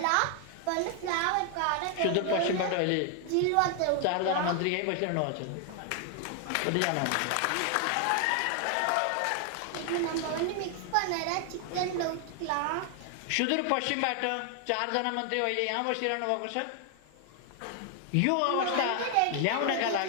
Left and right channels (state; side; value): different; both; correlation 0.00